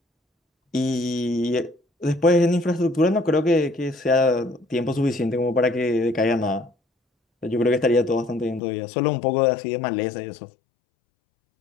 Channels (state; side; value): drops out; right; at 8.6 s